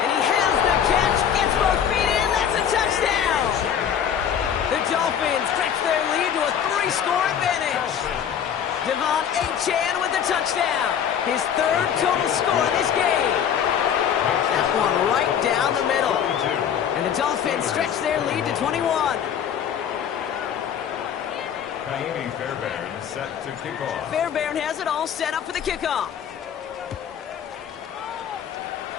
And he has the catch. Gets both feet in. That's a touchdown. The Dolphins stretch their lead to a 3-score advantage. Devon Achane with the touchdown. His third total score in this game. That one right down the middle. And the Dolphins stretch their lead to 21. Ka'imi Fairbairn set to kick off. Fairbairn has it all set up for the kickoff.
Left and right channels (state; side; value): quieter; right; 8.6 dB